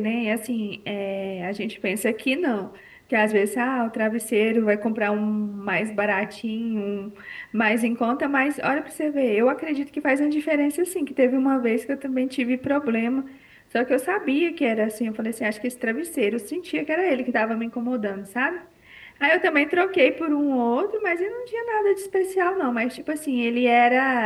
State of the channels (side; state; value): both; identical; correlation 1.00